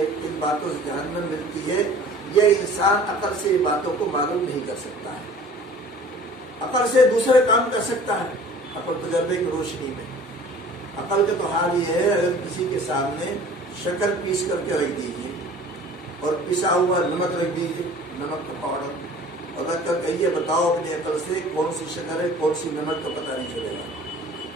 کن باتوں سے جہنم ملتی ہے. یہ انسان عقل سے ان باتوں کو معلوم نہیں کر سکتا ہے. عقل سے دوسرے کام کر سکتا ہے، عقل تجربے کی روشنی میں. عقل کا تو حال یہ ہے، اگر کسی کے سامنے شکر پیس کر کے رکھ دیجیے اور پسا ہوا نمک رکھ دیجیے، نمک کا پاؤڈر، اور رکھ کر کہیے بتاؤ اپنی عقل سے کون سی شکر ہے کون سی نمک، تو پتہ نہیں چلے گا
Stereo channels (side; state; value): both; normal; correlation 0.47